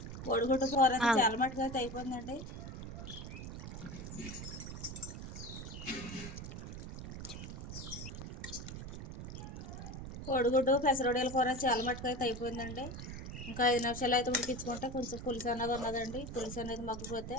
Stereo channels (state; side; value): noise; right; rumble, 8 dB below the sound